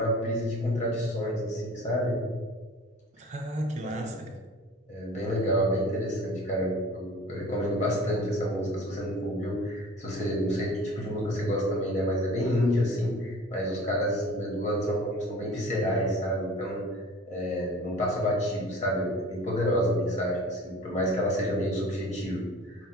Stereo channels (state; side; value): normal; both; correlation 0.43